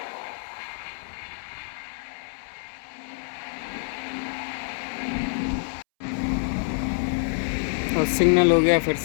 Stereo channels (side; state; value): right; silent; 60 dB below the other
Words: और सिग्नल हो गया फिर